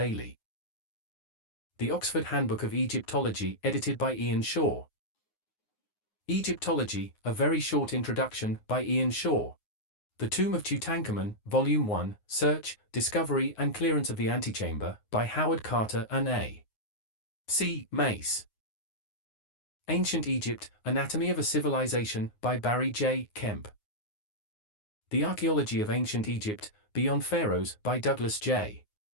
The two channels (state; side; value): late; right; 9.6 ms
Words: The Oxford Handbook of Egyptology, edited by Ian Shaw. Egyptology, A Very Short Introduction, by Ian Shaw. The Tomb of Tutankhamun, Volume 1, Search, Discovery and Clearance of the Antechamber, by Howard Carter and A. C. Mace. Ancient Egypt, Anatomy of a Civilization, by Barry J. Kemp. The Archaeology of Ancient Egypt, Beyond Pharaohs, by Douglas J.